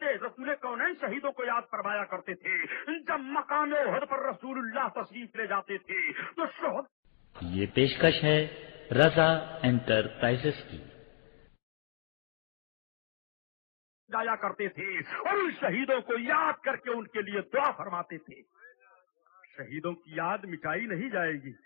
رسول کونین شہیدوں کو یاد فرمایا کرتے تھے۔ جب مقام احد پر رسول اللہ تشریف لے جاتے تھے تو شہد یہ پیشکش ہے رضا انٹرپرائزز کی جایا کرتے تھے اور ان شہیدوں کو یاد کر کے ان کے لیے دعا فرماتے تھے۔ شہیدوں کی یاد مٹائی نہیں جائے گی۔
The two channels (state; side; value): silent; right; 55 dB below the other